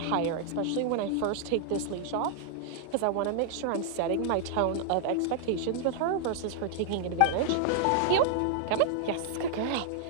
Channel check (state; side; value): different; both; correlation -0.01